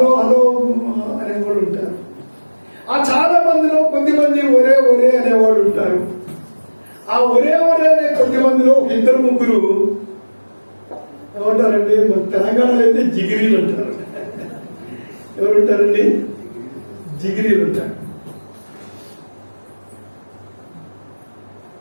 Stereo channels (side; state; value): both; inverted; correlation -1.00